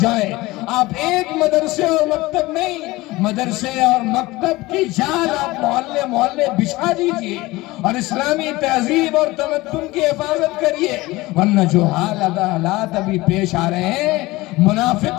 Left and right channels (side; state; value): right; quieter; 20.2 dB